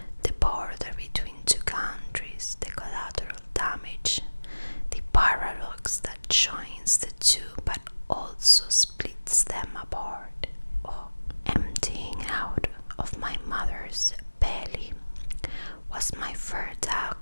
The border between two countries, the collateral damage, the paradox that joins the two but also splits them apart. Oh, emptying out of my mother's belly was my first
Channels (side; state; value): both; inverted; correlation -1.00